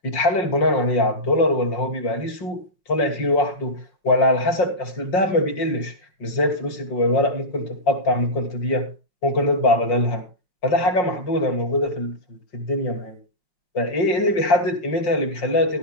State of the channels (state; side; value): late; right; 5.6 ms